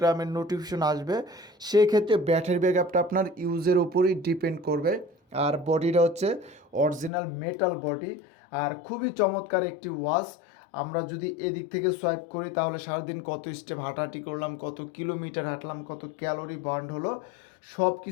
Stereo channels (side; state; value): right; drops out; at 7.1 s